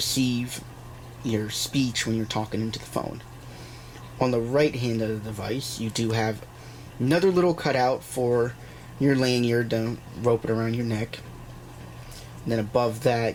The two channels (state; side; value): identical; both; correlation 1.00